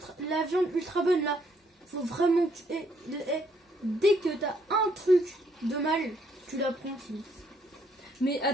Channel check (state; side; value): normal; both; correlation 0.69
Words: ultra bonne là. faut vraiment que dès que t'as un truc de mal, tu l'apprends. Mais